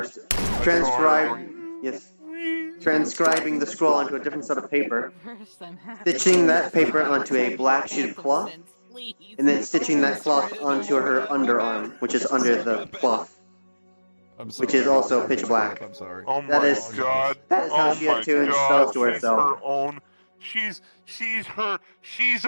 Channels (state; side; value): inverted; both; correlation -1.00